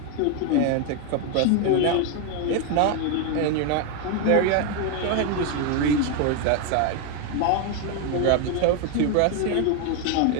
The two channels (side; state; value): both; different; correlation 0.01